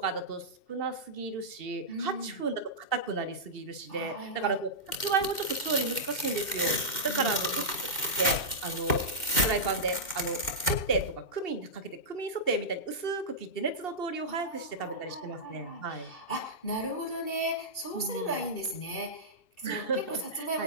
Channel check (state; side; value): late; right; 2.1 ms